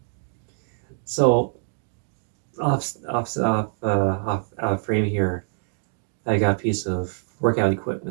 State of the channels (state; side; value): silent; left; digital silence